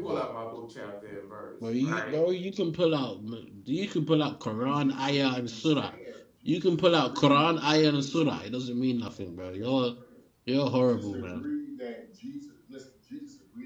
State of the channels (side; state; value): both; identical; correlation 1.00